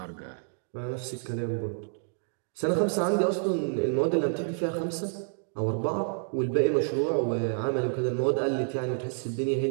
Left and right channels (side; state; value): left; silent; digital silence